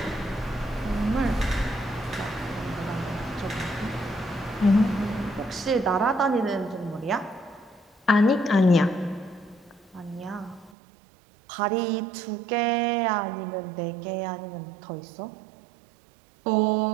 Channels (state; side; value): drops out; left; at 10.7 s